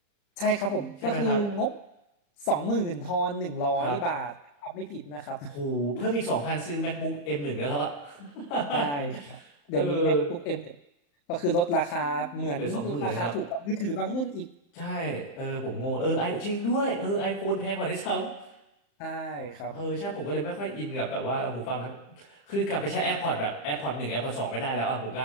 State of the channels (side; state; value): right; late; 35 ms